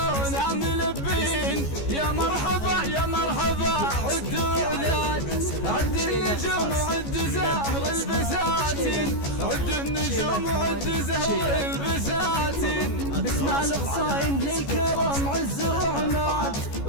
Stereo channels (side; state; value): right; late; 14 ms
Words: ملبين. يا مرحبا يا مرحبا عدوا ولاد عد النجوم وعد زهر البساتين عد النجوم وعد زهر البساتين. باسمع القصايم للكرم عز وعناد